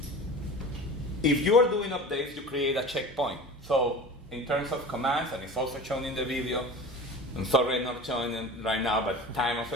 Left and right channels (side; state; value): both; normal; correlation 0.36